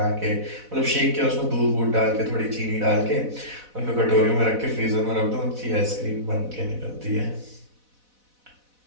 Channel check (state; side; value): late; left; 4.0 ms